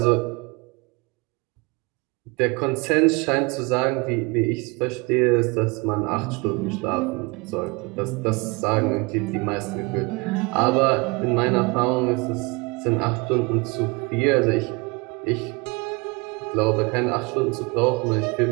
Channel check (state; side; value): quieter; left; 27.3 dB